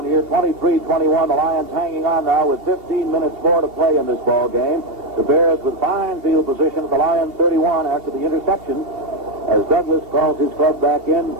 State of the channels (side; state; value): left; late; 2.8 ms